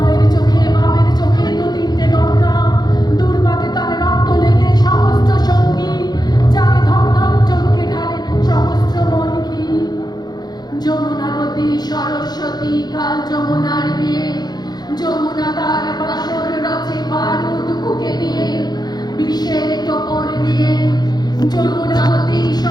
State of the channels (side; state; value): right; late; 0.20 ms